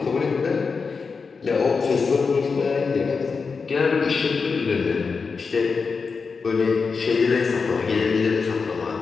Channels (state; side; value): quieter; right; 5.0 dB